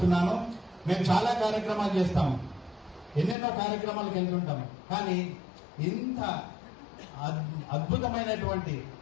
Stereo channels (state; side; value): drops out; right; at 3.4 s